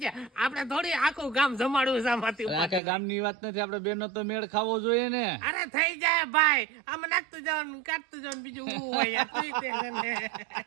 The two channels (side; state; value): left; drops out; at 2.8 s